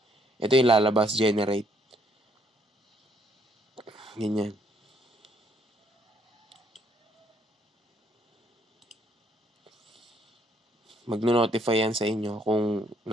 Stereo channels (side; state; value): both; normal; correlation 0.68